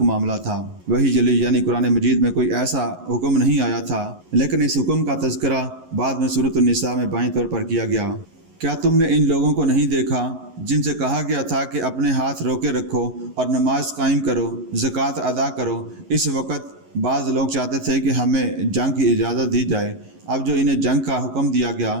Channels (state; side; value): late; left; 11 ms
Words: معاملہ تھا۔ وحی جلی یعنی قرآن مجید میں کوئی ایسا حکم نہیں آیا تھا، لیکن اس حکم کا تذکرہ بعد میں سورۃ النساء میں بائیں طور پر کیا گیا۔ کیا تم نے ان لوگوں کو نہیں دیکھا جن سے کہا گیا تھا کہ اپنے ہاتھ روکے رکھو اور نماز قائم کرو، زکوٰۃ ادا کرو؟ اس وقت بعض لوگ چاہتے تھے کہ ہمیں جنگ کی اجازت دی جائے۔ اب جو انہیں جنگ کا حکم دیا گیا